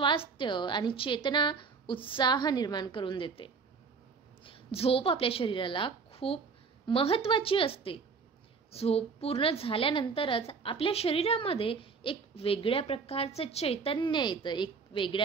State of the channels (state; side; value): quieter; left; 5.1 dB